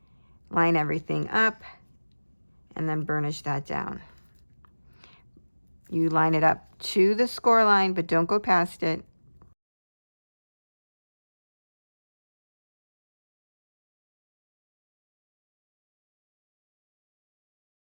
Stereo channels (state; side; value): inverted; both; correlation -1.00